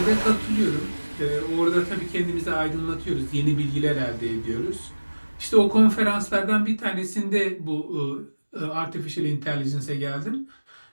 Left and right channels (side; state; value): both; inverted; correlation -1.00